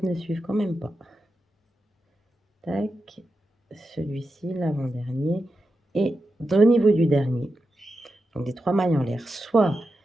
ne suivent quand même pas. Tac, celui-ci, l'avant-dernier. Et au niveau du dernier, donc des 3 mailles en l'air, soit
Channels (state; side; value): normal; both; correlation 0.89